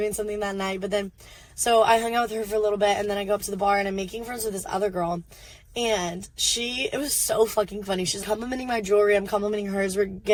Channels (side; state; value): both; identical; correlation 1.00